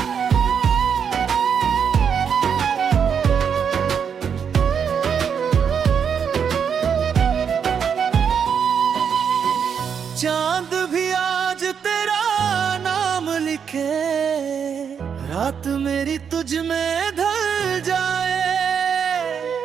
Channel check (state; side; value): quieter; left; 7.2 dB